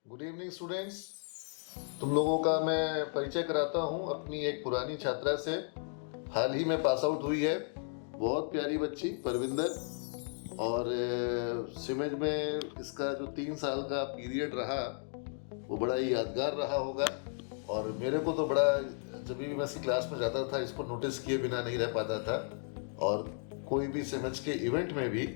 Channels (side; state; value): right; silent; 55 dB below the other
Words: Good evening students. तुम लोगों का मैं परिचय कराता हूँ अपनी एक पुरानी छात्रा से। हाल ही में पास आउट हुई है, बहुत प्यारी बच्ची परविंदर। और सिमेज में इसका जो 3 साल का पीरियड रहा वो बड़ा ही यादगार रहा होगा। और मेरे को तो बड़ा, जब भी मैं इसकी क्लास में जाता था इसको नोटिस किए बिना नहीं रह पाता था। और कोई भी सिमेज के इवेंट में भी